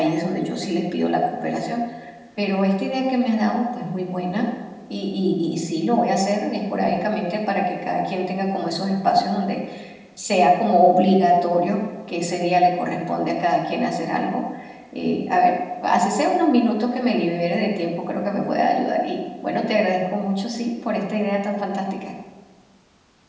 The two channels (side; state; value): both; identical; correlation 1.00